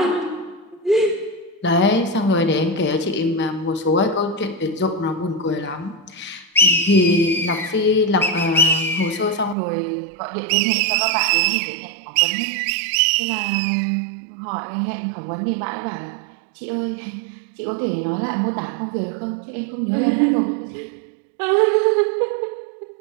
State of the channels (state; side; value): drops out; left; at 9.6 s